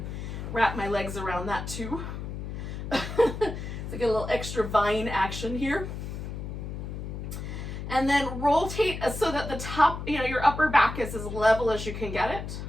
wrap my legs around that too. So get a little extra vine action here. And then rotate so that the top, your upper back is as level as you can get it.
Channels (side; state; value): left; noise; hum, 7 dB below the sound